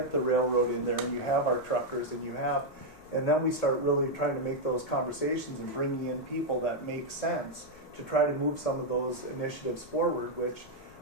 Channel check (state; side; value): normal; both; correlation 0.00